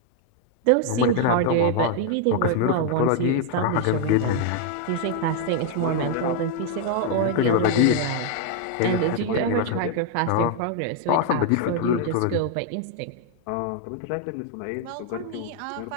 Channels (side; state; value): both; different; correlation 0.00